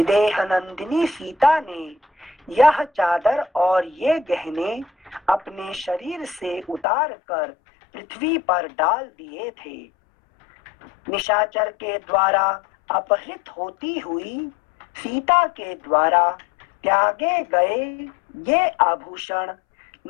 नंदिनी सीता ने यह चादर और ये गहने अपने शरीर से उतार कर पृथ्वी पर डाल दिए थे। निशाचर के द्वारा अपहृत होती हुई सीता के द्वारा त्यागे गए ये आभूषण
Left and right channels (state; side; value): drops out; right; at 6.9 s